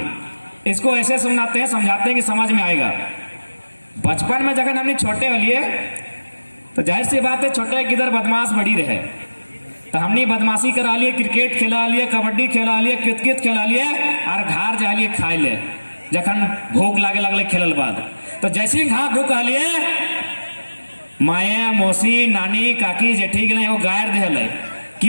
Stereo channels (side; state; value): both; inverted; correlation -1.00